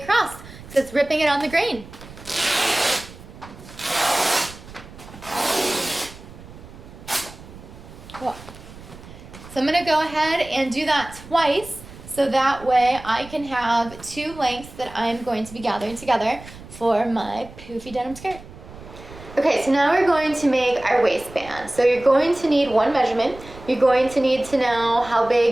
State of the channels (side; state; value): right; noise; rumble, 17 dB below the sound